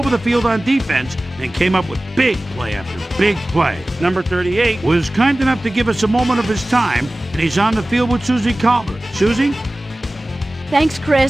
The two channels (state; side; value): normal; both; correlation 0.97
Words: the field on defense and came up with big play after big play. Number 38 was kind enough to give us a moment of his time, and he's on the field with Susie Colbert. Susie? Thanks,